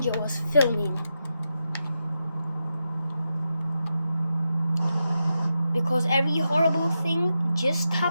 was filming because every horrible thing just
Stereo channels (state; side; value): inverted; both; correlation -0.87